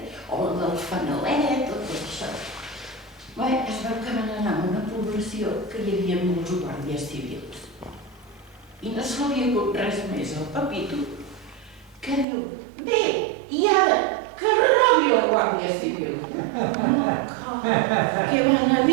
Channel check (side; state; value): left; drops out; at 12.2 s